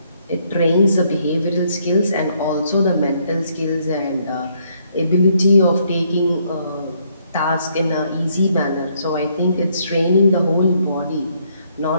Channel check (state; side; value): inverted; both; correlation -0.71